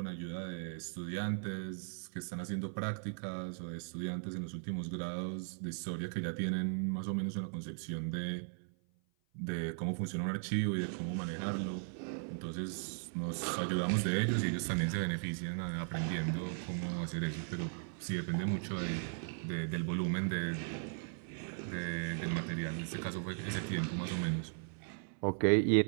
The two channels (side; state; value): left; silent; 53 dB below the other